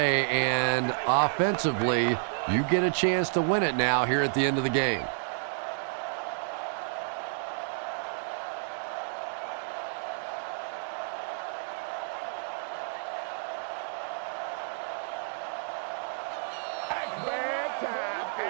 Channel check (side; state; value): left; silent; digital silence